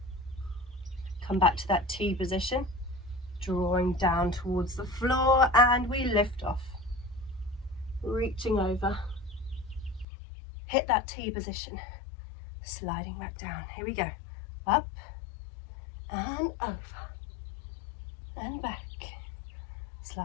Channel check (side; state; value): right; drops out; at 10.1 s